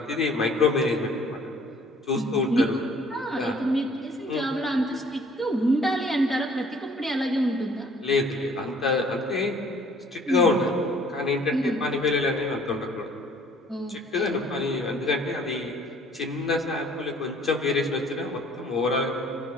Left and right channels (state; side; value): normal; both; correlation 0.56